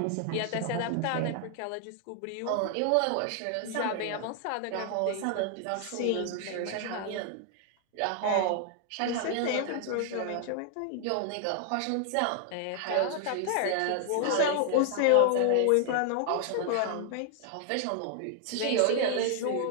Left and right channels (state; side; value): different; both; correlation 0.00